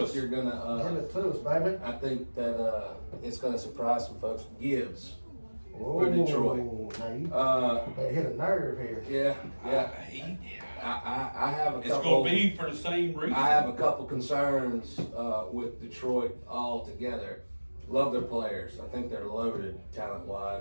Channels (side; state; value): both; inverted; correlation -1.00